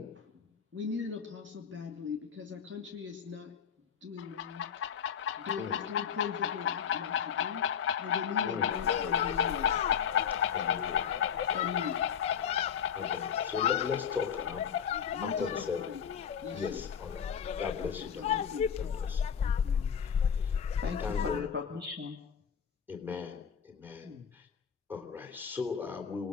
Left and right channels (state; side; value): quieter; right; 7.7 dB